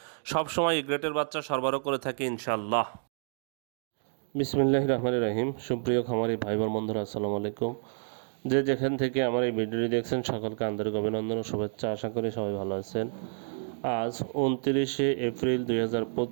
সবসময় গ্রেটের বাচ্চা সরবরাহ করে থাকি ইনশাল্লাহ। বিসমিল্লাহির রহমানির রহিম। সুপ্রিয় খামারি ভাই বোন বন্ধুরা, আসসালামু আলাইকুম। যে যেখান থেকে আমার এই ভিডিওটি দেখছেন সকলকে আন্তরিক অভিনন্দন ও শুভেচ্ছা। আশা করি সবাই ভালো আছেন। আজ 29শে এপ্রিল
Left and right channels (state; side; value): silent; left; digital silence